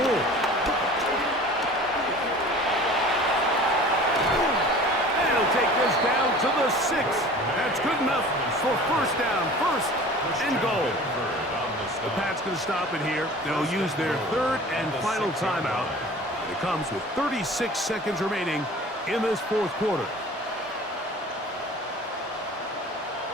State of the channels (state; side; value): normal; both; correlation 0.43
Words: more. And he'll take this down to the 6. That's good enough for first down, 1st and goal. The Pats going to stop it here. They'll use their 3rd and final timeout. It comes with 36 seconds remaining in this 4th quarter.